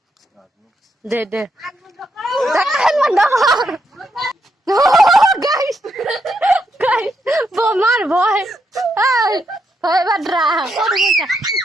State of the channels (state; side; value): normal; both; correlation 0.80